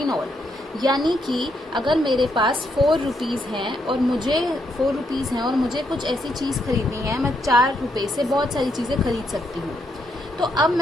in all. यानी कि अगर मेरे पास 4 रुपीज़ हैं और मुझे कुछ ऐसी चीज़ खरीदनी है, मैं 4 रुपये से बहुत सारी चीज़ें खरीद सकती हूँ। तो अब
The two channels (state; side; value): normal; both; correlation 0.77